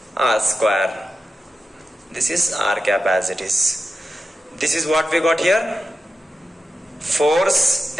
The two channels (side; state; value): both; normal; correlation 0.91